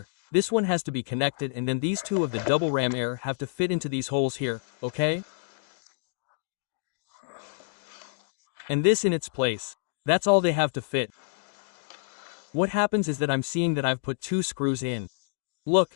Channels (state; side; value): silent; right; digital silence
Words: this one has to be connected and then these 2 of the double ram air have to fit into these holes here, okay? And this in its place. That's all they have to fit. What happens is that I'm seeing that I've put 2 screws in.